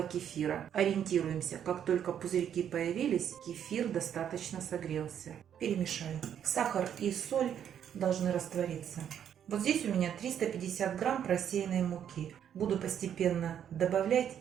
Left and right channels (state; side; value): quieter; left; 9.2 dB